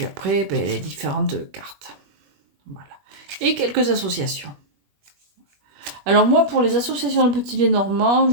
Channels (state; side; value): late; left; 21 ms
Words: après, les différentes cartes. Voilà. Et quelques associations. Alors moi, pour les associations de petits Lenormand,